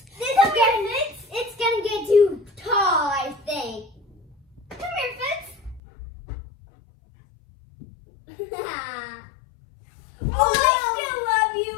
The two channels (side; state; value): right; drops out; at 5.8 s